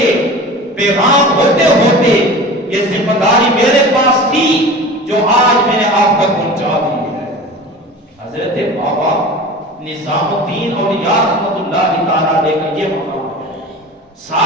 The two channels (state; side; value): normal; both; correlation 0.36